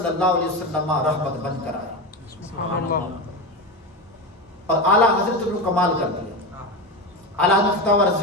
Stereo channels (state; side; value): normal; both; correlation 0.19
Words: اللہ علیہ وسلم رحمت بن کر آیا اور اعلیٰ حضرت نے کمال کر دیا. اعلیٰ حضرت فتاوی